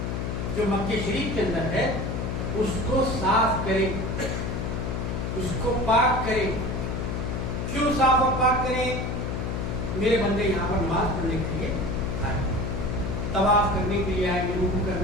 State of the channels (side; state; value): left; noise; hum, 2 dB below the sound